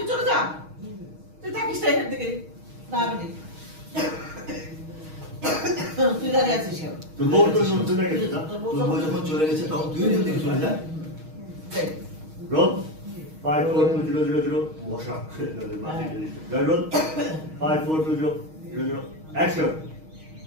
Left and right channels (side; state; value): left; late; 6.3 ms